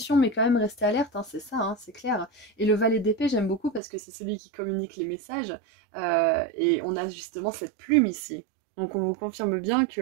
mais quand même rester alerte, hein, c'est ça, hein, c'est clair. Et le valet d'épée, j'aime beaucoup parce que c'est celui qui communique les messages. Et on a justement cette plume ici. Donc on vous confirme bien que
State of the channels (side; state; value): left; drops out; at 3.8 s